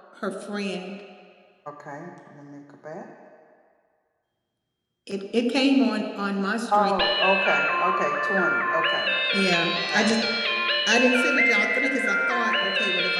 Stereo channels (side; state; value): both; identical; correlation 1.00